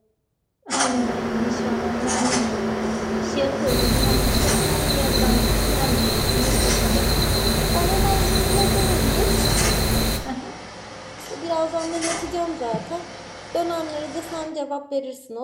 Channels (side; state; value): both; identical; correlation 1.00